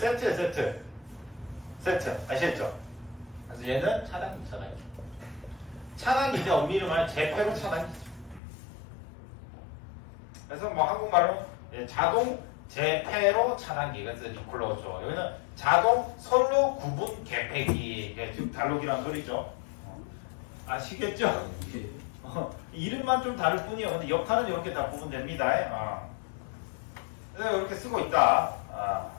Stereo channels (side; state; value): right; drops out; at 8.4 s